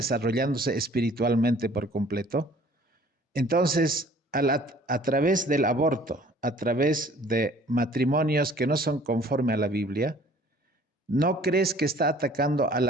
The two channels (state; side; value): normal; both; correlation 0.53